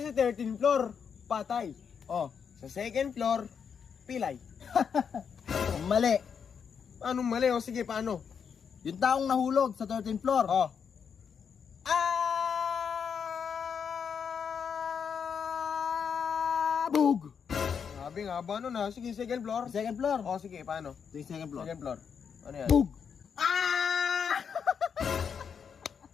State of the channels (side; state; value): right; quieter; 6.9 dB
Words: 13th floor, patay. Oh, Sa 2nd floor, pilay. mali. Paano mali? O sige, paano? Yung taong nahulog sa 13th floor. Oh. Bug! Sabi nga ba ano na? Sige, 2nd floor. 2nd floor. O sige, paano? Ito yung 2nd floor. 2nd floor. Ano yan? Bug!